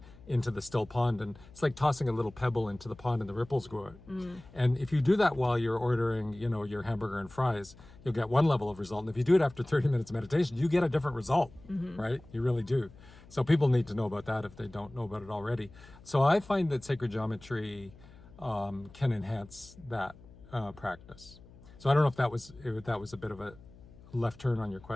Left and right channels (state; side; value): noise; left; hum, 22 dB below the sound